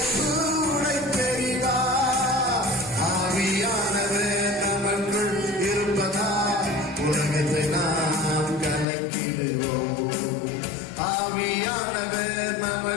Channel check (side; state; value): right; drops out; at 8.8 s